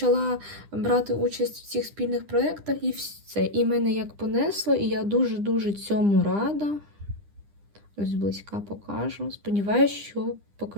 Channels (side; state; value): left; late; 9.9 ms